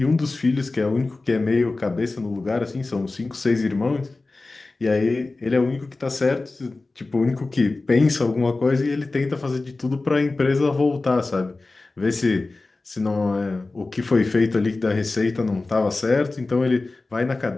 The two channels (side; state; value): right; quieter; 3.3 dB